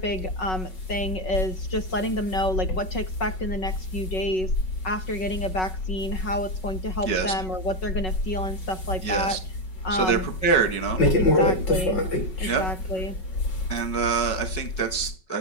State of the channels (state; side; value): late; right; 5.4 ms